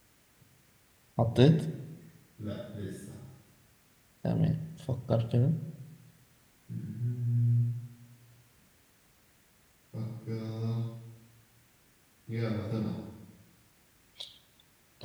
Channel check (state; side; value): identical; both; correlation 1.00